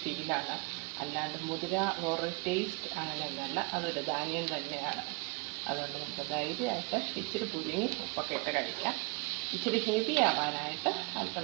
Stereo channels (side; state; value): left; quieter; 30.0 dB